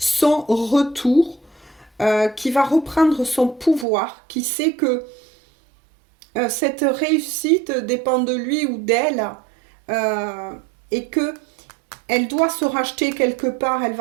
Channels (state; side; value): drops out; left; at 3.9 s